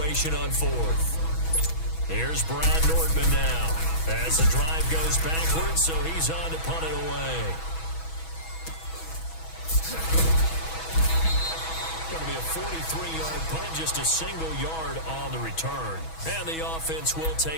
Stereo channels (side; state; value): right; late; 6.2 ms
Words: on 4th. Here's Brad Nortman now as the drive goes backwards, so he's on to punt it away. Going to be a 43-yard punt, just a single yard on the return. And the offense will